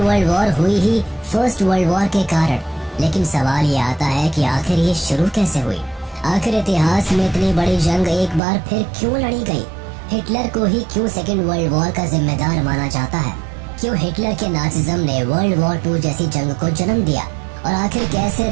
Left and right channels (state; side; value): drops out; left; at 8.4 s